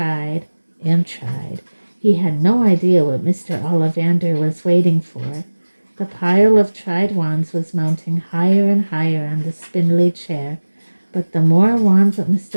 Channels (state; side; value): inverted; both; correlation -1.00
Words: and tried. He had no idea what Mr. Ollivander was waiting for. The pile of tried wands was mounting higher and higher on the spindly chair, but the more wands that